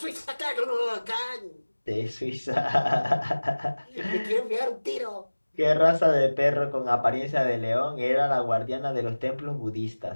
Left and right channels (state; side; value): inverted; both; correlation -1.00